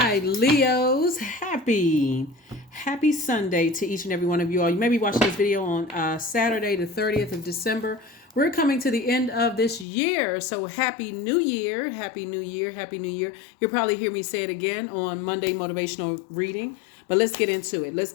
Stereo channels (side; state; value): right; drops out; at 9.9 s